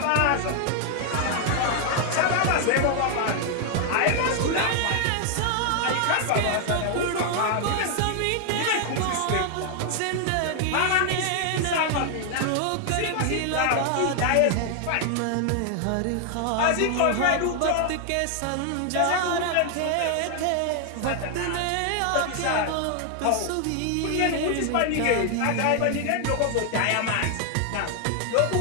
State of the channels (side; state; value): both; different; correlation 0.00